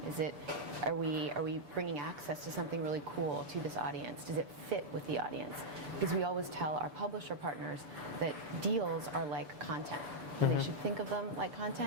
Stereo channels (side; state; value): left; late; 6.9 ms